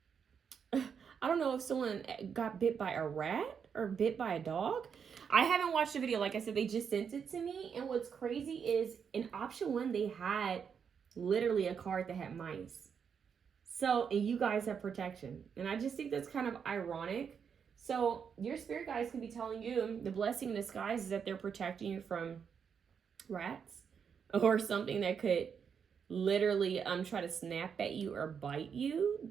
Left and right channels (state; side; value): quieter; left; 6.9 dB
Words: I don't know if someone got bit by a rat or bit by a dog. I haven't watched the video. Like I said, they just sent it to me. And what's crazy is in option 1, they had literally a card that had mice. So, and you guys have protection. And I just think that's kind of ironic. So your spirit guides could be telling you the blessing in disguise is that they're protecting you from rats or something that could literally try to snap at you or bite you.